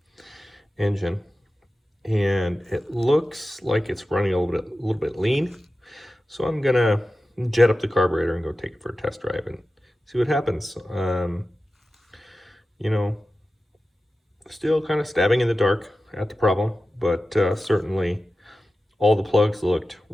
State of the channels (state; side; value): normal; both; correlation 0.94